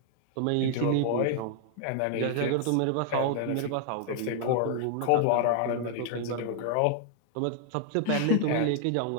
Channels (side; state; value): both; different; correlation 0.00